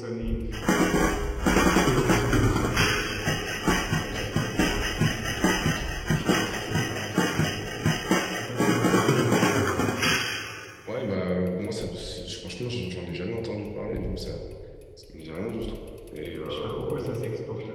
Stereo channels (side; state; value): both; identical; correlation 1.00